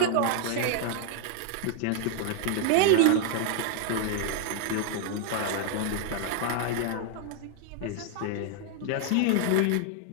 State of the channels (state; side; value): different; both; correlation 0.00